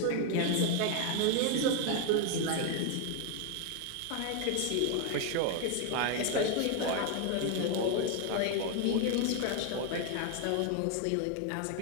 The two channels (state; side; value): different; both; correlation 0.01